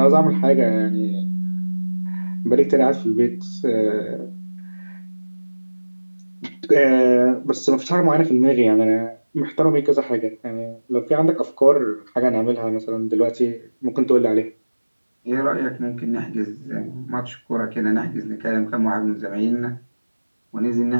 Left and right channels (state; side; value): inverted; both; correlation -1.00